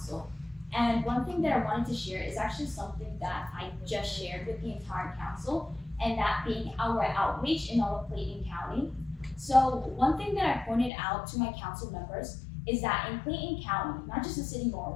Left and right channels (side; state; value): right; drops out; at 10.9 s